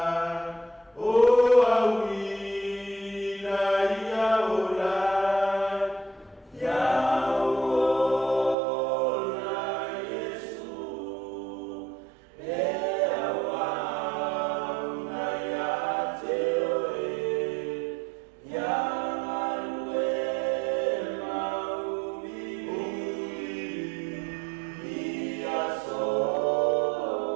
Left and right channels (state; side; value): drops out; left; at 8.6 s